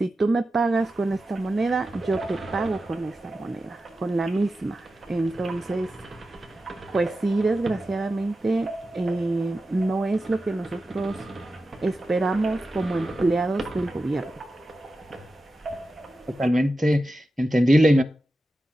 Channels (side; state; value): both; normal; correlation 0.92